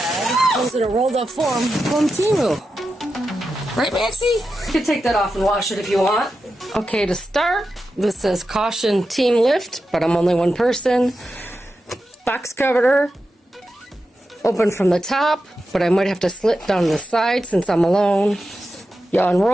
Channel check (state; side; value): normal; both; correlation 0.90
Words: Comes in a rolled-up form from TEMU. Right, Maxie? You can take that off and wash it if you want. Okay, to start, this says caution team lift, but I'm only one person. Box cover, open from the top, but I might have to slit down the side since I'm alone. You